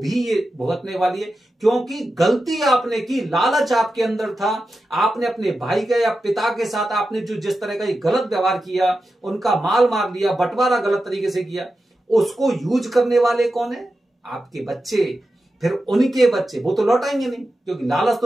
ये भुगतने वाली है। क्योंकि गलती आपने की, लालच आपके अंदर था, आपने अपने भाई के या पिता के साथ आपने जो जिस तरह का ये गलत व्यवहार किया, उनका माल मार लिया, बंटवारा गलत तरीके से किया, उसको यूज करने वाले कौन है? आपके बच्चे, फिर उनके बच्चे, वो तो लौटाएंगे नहीं, क्योंकि लालच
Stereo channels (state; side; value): normal; both; correlation 0.91